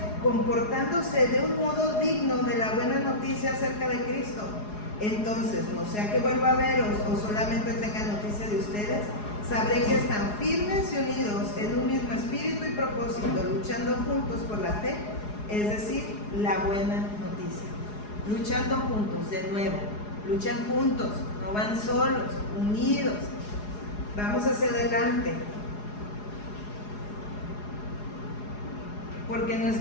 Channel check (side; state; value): right; late; 4.8 ms